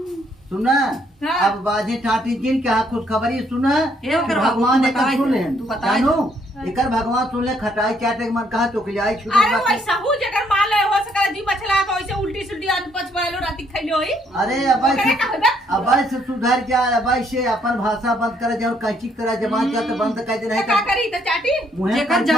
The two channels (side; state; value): both; normal; correlation 0.69